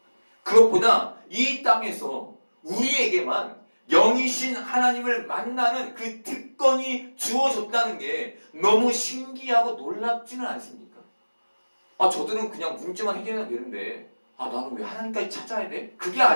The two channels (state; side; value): inverted; both; correlation -1.00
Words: 그것보다 이 땅에서 우리에게만 영이신 하나님을 만나는 그 특권이 주어졌다는 게 너무 신기하고 놀랍지는 않습니까? 아, 저들은 그냥 문제만 해결하면 되는데 나는 왜 하나님까지 찾아야 돼? 그게